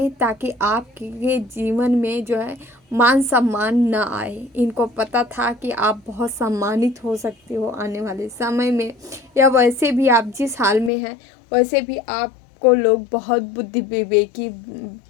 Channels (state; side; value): drops out; right; at 10.9 s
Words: ताकि आपके जीवन में जो है मान सम्मान ना आए। इनको पता था कि आप बहुत सम्मानित हो सकते हो आने वाले समय में, या वैसे भी आप जिस हाल में हैं वैसे भी आपको लोग बहुत बुद्धि विवेकी